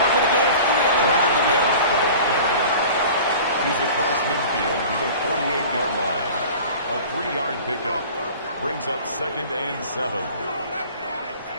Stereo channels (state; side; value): inverted; both; correlation -0.41